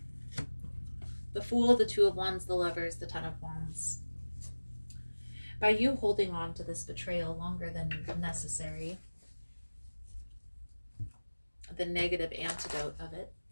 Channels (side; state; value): both; inverted; correlation -1.00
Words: The Fool, the Two of Wands, the Lovers, the Ten of Wands. By you holding on to this betrayal longer than necessary, the negative antidote of it,